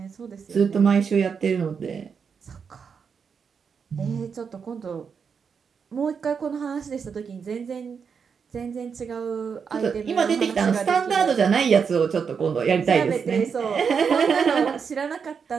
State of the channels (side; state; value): left; quieter; 6.3 dB